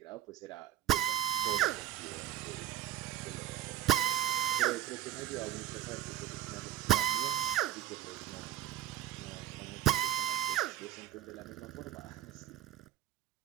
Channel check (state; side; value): quieter; left; 12.4 dB